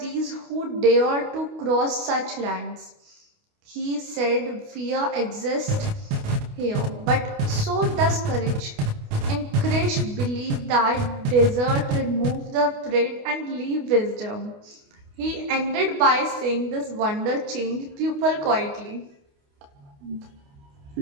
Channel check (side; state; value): left; late; 28 ms